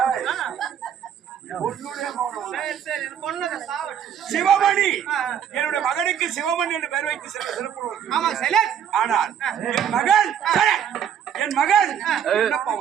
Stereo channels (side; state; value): left; quieter; 8.9 dB